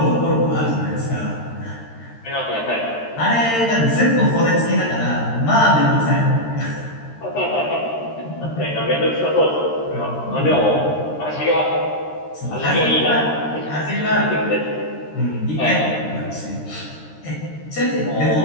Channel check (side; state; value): right; late; 13 ms